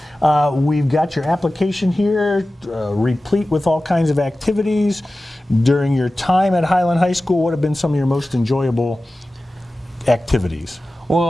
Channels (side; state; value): both; normal; correlation 0.96